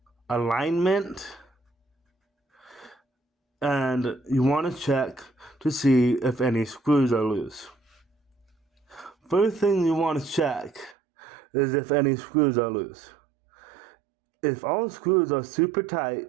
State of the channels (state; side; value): drops out; left; at 11.0 s